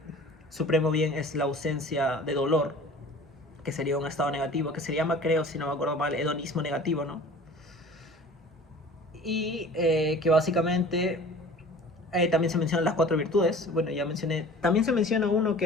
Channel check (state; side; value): normal; both; correlation 0.44